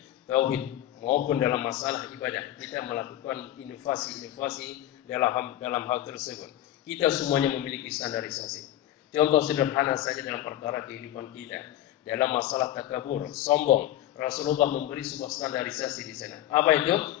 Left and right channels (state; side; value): quieter; right; 13.2 dB